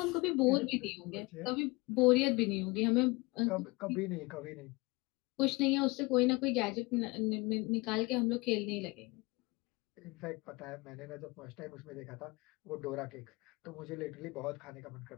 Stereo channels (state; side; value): quieter; right; 24.4 dB